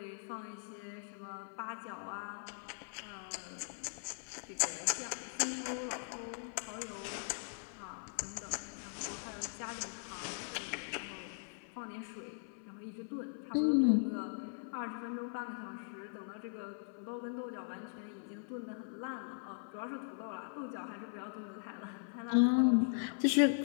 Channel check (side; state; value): right; silent; 51 dB below the other